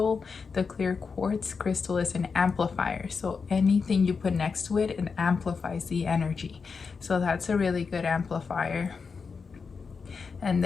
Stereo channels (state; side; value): quieter; right; 5.2 dB